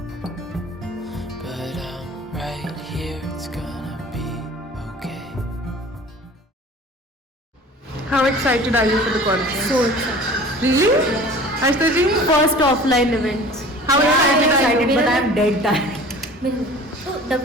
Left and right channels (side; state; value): both; normal; correlation 0.43